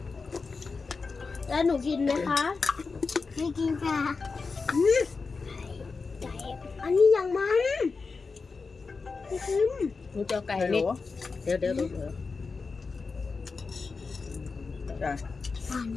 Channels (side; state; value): right; quieter; 4.5 dB